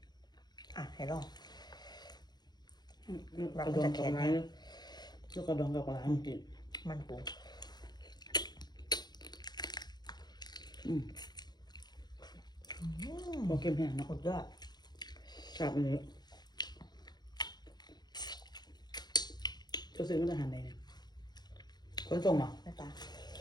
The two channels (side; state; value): right; late; 0.20 ms